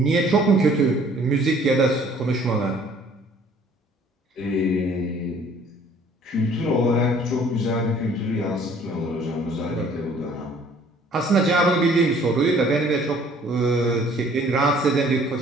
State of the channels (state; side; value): normal; both; correlation 0.56